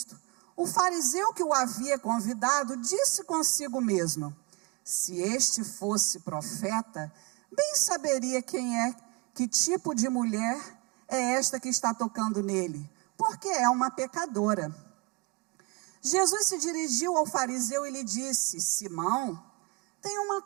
o fariseu que o havia convidado disse consigo mesmo: se este fosse profeta, bem saberia que tipo de mulher é esta que está tocando nele, porque é uma pecadora. Jesus se dirigiu ao fariseu e lhe disse: Simão, tenho uma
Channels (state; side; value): quieter; left; 27.4 dB